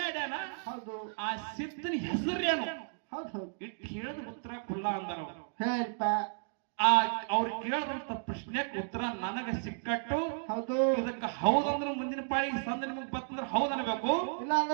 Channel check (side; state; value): left; silent; digital silence